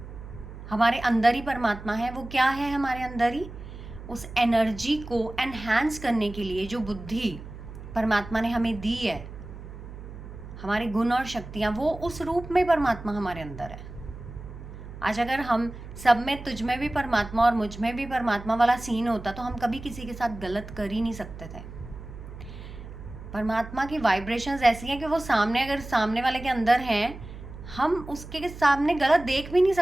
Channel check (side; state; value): right; noise; hum, 13 dB below the sound